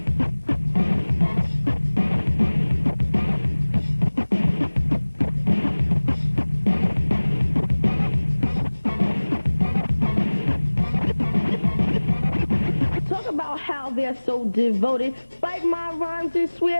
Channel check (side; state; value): both; inverted; correlation -1.00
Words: How they're so devoted. Bite my rhymes and